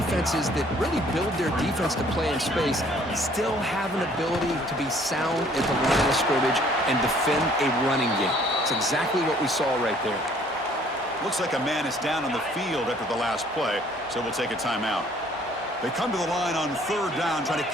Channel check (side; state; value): both; normal; correlation 0.59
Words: that really build their defense to play in space still have an ability to be sound at the line of scrimmage and defend a running game. It's exactly what we saw right there. Looks like a man is down on the field after the last play, so we'll take a timeout. They come to the line on third down, trying to